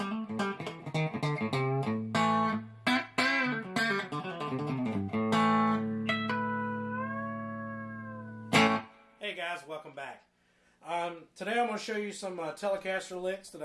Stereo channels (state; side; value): identical; both; correlation 1.00